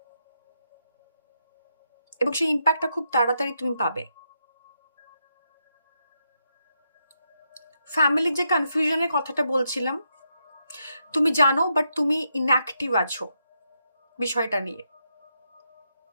এবং সেই ইম্প্যাক্টটা খুব তাড়াতাড়ি তুমি পাবে। ফ্যামিলির যে কনফিউশনের কথাটা বলছিলাম, তুমি জানো, বাট তুমি ইনঅ্যাক্টিভ আছো বিষয়টা নিয়ে।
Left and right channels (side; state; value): both; inverted; correlation -0.82